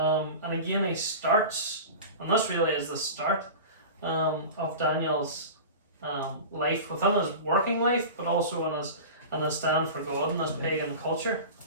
again, he starts, and this really is the start, of Daniel's life within his working life, but also in his stand for God in this pagan culture.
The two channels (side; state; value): both; inverted; correlation -0.32